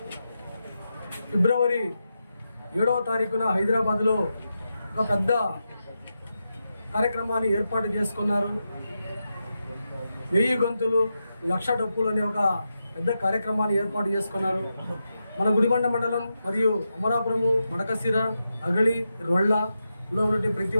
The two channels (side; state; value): both; inverted; correlation -0.88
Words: ఫిబ్రవరి 7వ తారీఖున హైదరాబాద్లో ఒక పెద్ద కార్యక్రమాన్ని ఏర్పాటు చేసుకున్నారు. 1000 గొంతులు 1,00,000 డప్పులు అనే ఒక పెద్ద కార్యక్రమాన్ని ఏర్పాటు చేసుకున్నారు. మన గుడిబండ మండలం మరియు అమరాపురము, మడకశిర, అగళి, రొళ్ళలో ఉన్నటువంటి ప్రతి